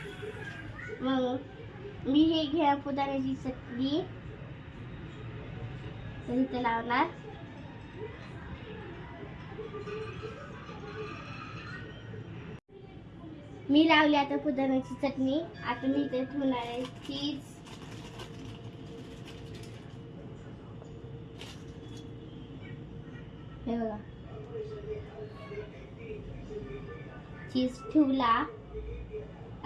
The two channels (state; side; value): identical; both; correlation 1.00